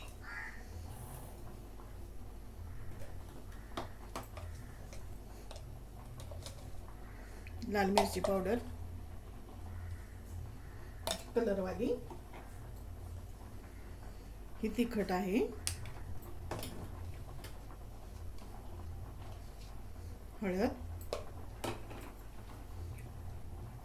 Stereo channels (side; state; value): both; identical; correlation 1.00